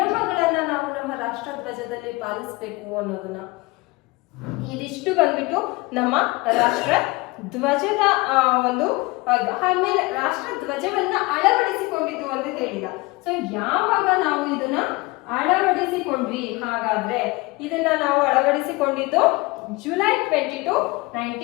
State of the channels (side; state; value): right; quieter; 23.2 dB